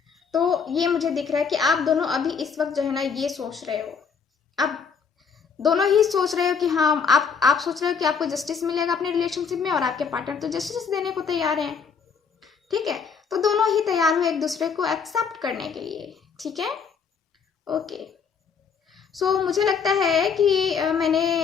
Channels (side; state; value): right; quieter; 6.1 dB